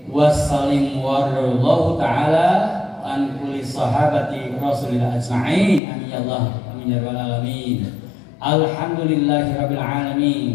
wa sallim warallahu ta'ala an kulli sahabati rasulillah ajma'in. Amin ya Allah, amin ya rabbal alamin. Alhamdulillahi rabbil alamin.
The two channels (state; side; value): drops out; right; at 5.8 s